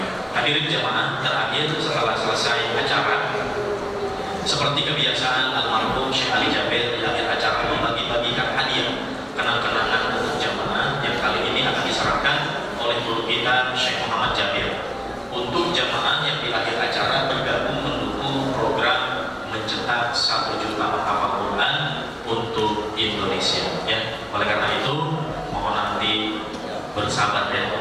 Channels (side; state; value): both; identical; correlation 1.00